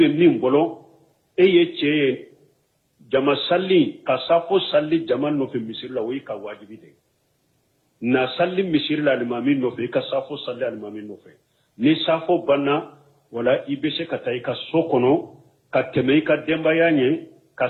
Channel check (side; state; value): both; identical; correlation 1.00